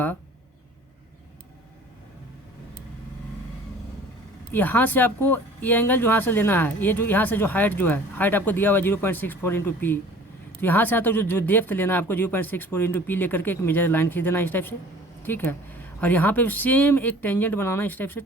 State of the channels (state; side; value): normal; both; correlation 0.47